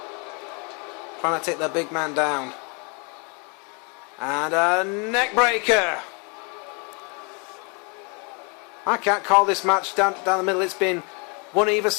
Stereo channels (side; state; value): right; quieter; 33.8 dB